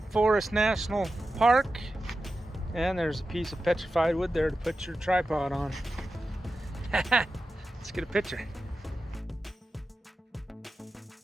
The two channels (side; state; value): both; normal; correlation 0.92